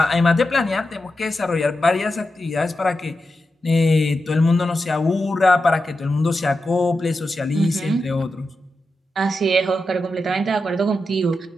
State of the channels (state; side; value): normal; both; correlation 0.89